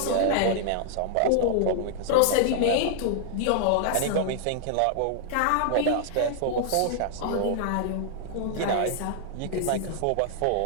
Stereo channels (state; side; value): different; both; correlation -0.01